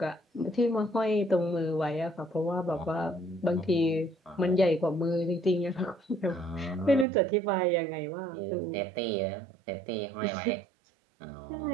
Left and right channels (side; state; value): left; drops out; at 7.1 s